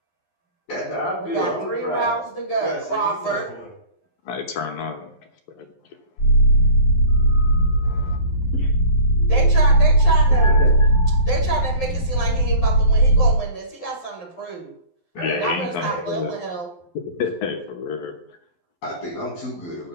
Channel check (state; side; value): late; right; 11 ms